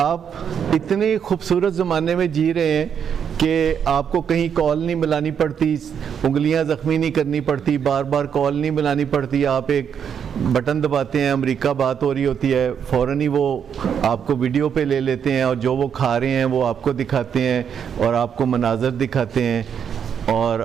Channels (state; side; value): quieter; left; 7.8 dB